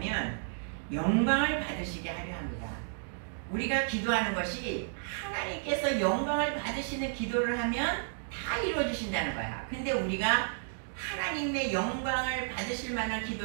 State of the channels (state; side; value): silent; left; digital silence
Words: 영광을 받으시게 하려 합니다. 우리가 기도하는 것이 하나님께서 영광을 받으시는 기도를 하면 다 이루어주신다는 거야. 근데 우리가 하나님의 영광을 받으실 만한